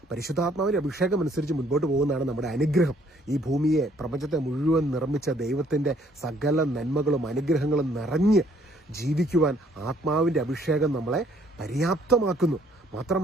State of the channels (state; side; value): normal; both; correlation 0.63